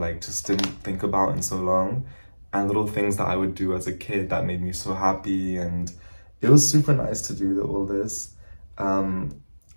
just didn't think about in so long, and little things that I would do as a kid that made me so happy, and it was super nice to do all this. Um,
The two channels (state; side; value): inverted; both; correlation -1.00